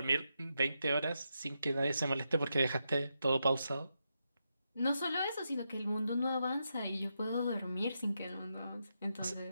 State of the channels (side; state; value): both; inverted; correlation -0.85